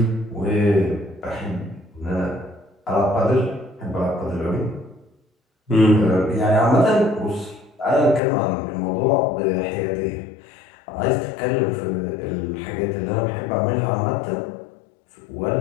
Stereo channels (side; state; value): right; drops out; at 8.2 s